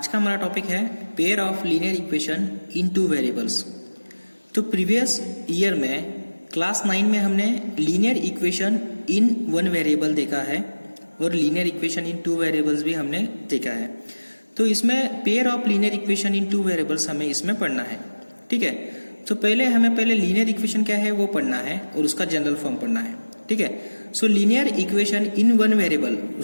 का हमारा टॉपिक है pair of linear equation in two variables. तो प्रीवियस ईयर में क्लास 9 में हमने linear equation in one variable देखा है और linear equation in two variables भी हमने देखा है। तो इसमें pair of linear equation in two variables हमें इसमें पढ़ना है, ठीक है। तो हमें लीनियर इक्वेशन क्या है वो पढ़ना है और उसका जनरल फॉर्म पढ़ना है, ठीक है। So linear equation in one variable,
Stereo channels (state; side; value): inverted; both; correlation -1.00